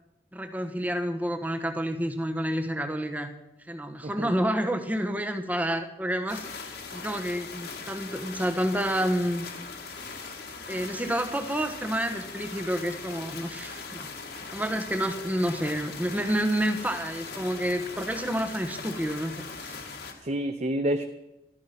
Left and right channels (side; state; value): both; normal; correlation 0.78